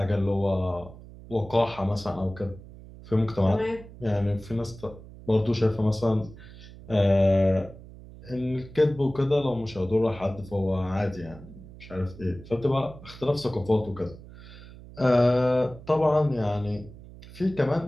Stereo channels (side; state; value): right; noise; hum, 18 dB below the sound